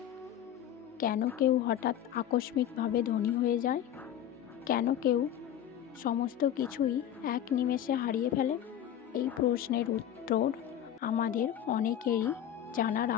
কেন কেউ হঠাৎ আকস্মিকভাবে ধনী হয়ে যায়? কেন কেউ সমস্ত কিছুই এক নিমেষে হারিয়ে ফেলে? এই প্রশ্নের উত্তর আমাদের অনেকেরই জানার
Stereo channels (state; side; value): quieter; right; 10.5 dB